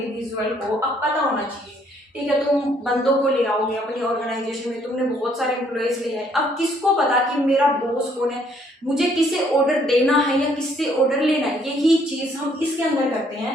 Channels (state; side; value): normal; both; correlation 0.66